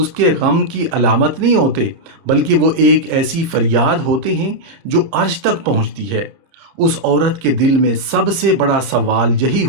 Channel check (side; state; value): left; late; 30 ms